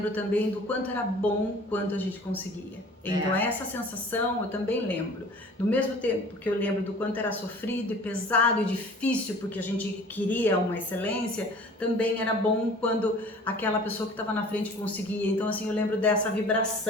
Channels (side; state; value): both; normal; correlation 0.46